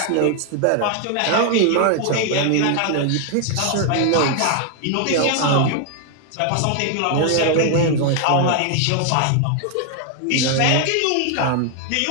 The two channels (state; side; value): different; both; correlation 0.00